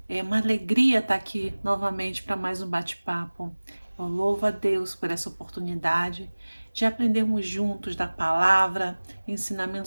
É uma alegria estar aqui novamente para mais um bate-papo. Eu louvo a Deus por essa oportunidade de aprendermos juntos da palavra,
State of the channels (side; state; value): both; inverted; correlation -1.00